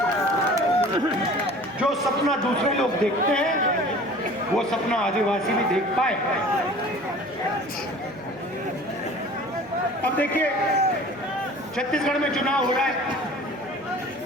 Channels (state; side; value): noise; right; hum, 24 dB below the sound